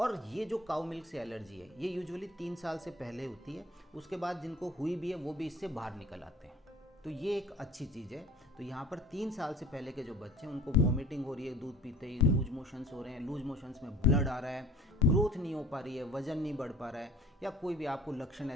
ये जो काऊ मिल्क से एलर्जी है ये यूजुअली 3 साल से पहले होती है। उसके बाद जिनको हुई भी है वो भी इससे बाहर निकल आते हैं। तो ये एक अच्छी चीज़ है। तो यहाँ पर 3 साल से पहले के जो बच्चे हैं उनको वॉमिटिंग हो रही है दूध पीते ही, लूज मोशंस हो रहे हैं, लूज मोशंस में ब्लड आ रहा है, ग्रोथ नहीं हो पा रही है, वजन नहीं बढ़ पा रहा है, या कोई भी आपको लक्षण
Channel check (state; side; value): normal; both; correlation 0.48